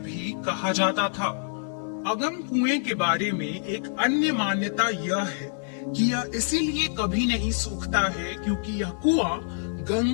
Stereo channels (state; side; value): silent; right; digital silence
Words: कहा जाता था। अगम कुएं के बारे में एक अन्य मान्यता यह है कि यह इसीलिए कभी नहीं सूखता है क्योंकि यह कुआं